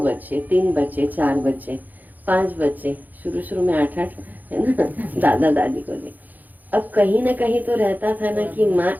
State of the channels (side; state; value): left; late; 0.084 ms